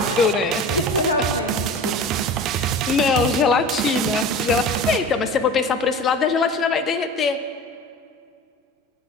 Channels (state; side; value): normal; both; correlation 0.36